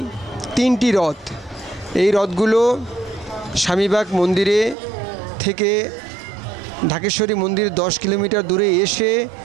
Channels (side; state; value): left; drops out; at 4.8 s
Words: 3টি রথ, এই রথগুলো স্বামীবাগ মন্দিরে থেকে ঢাকেশ্বরী মন্দির 10 কিলোমিটার দূরে এসে